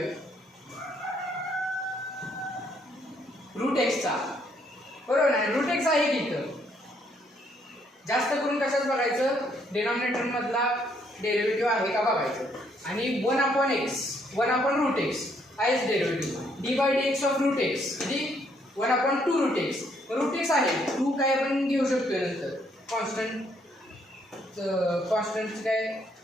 √x चा, बरोबर नाही. √x आहे की इथं. जास्त करून कशाच बघायचं, डिनॉमिनेटर मधला डेरिव्हेटिव्ह आहे का बघायचं. आणि 1/√x आहेच डेरिव्हेटिव्ह. d/dx ऑफ √x किती 1/2√x. √x आहे 2 काय आपण घेऊ शकतोय नंतर कॉन्स्टंट काय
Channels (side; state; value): both; normal; correlation 0.70